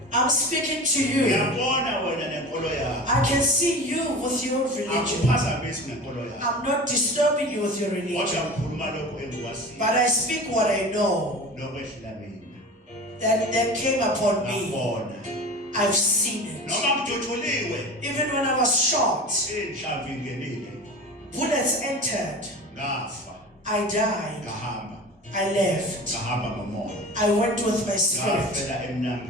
I'm speaking to you. Ngiyabona wena nenkolo yakho. I can see you with your religion. Akuphazamisi nenkolo yakho. I'm not disturbing you with your religion, Kodwa ngikhuluma lokho engikwaziyo. but I speak what I know Lokwehlula mina. that came upon me. Ngabona. I've seen it. Noma ngiduthuliwe. Even when I was shot, Inhlamvu ingenile. bullets entered. Ngafa. I died. Ngahamba. I left. Ngahamba ngomoya. I went with my spirit. Ngafela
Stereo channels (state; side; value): normal; both; correlation 0.34